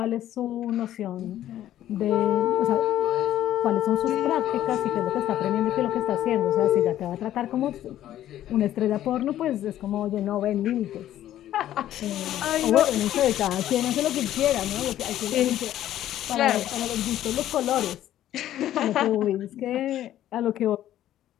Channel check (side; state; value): right; quieter; 12.5 dB